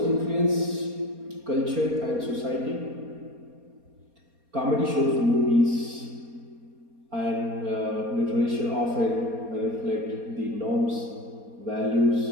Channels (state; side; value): late; left; 4.3 ms